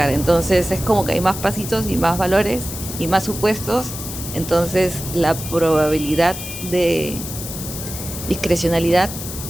Entonces es como que hay más pasitos y más valores y más supuestos. Entonces la probabilidad de discrecionalidad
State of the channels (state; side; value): noise; left; hiss, 9 dB below the sound